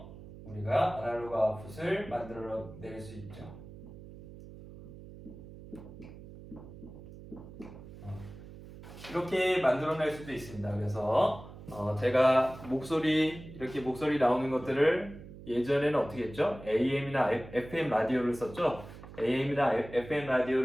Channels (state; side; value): noise; right; hum, 16 dB below the sound